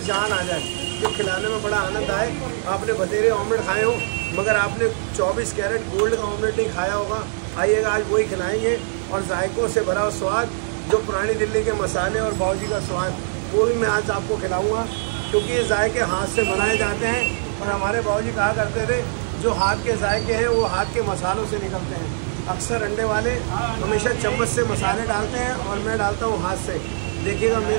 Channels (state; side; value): silent; left; digital silence